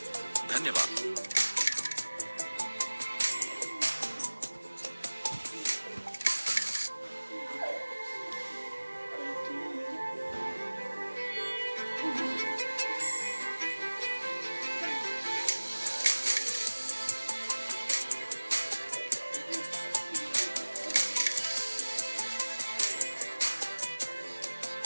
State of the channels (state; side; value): inverted; both; correlation -1.00